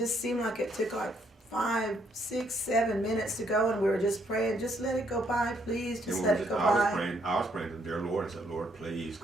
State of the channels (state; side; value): normal; both; correlation 0.71